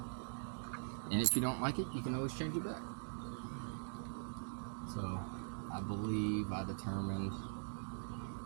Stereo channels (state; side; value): silent; left; digital silence